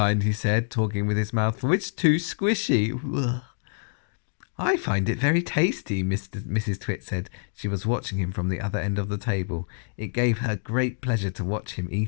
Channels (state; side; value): silent; right; digital silence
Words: he said, talking with his mouth full. It's too squishy. Ugh. I find it very tasty, Mrs. Twit said. She was watching him from the other end of the table. It gave her great pleasure to watch him